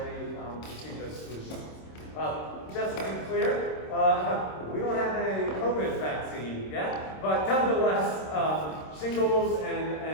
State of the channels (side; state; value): right; late; 26 ms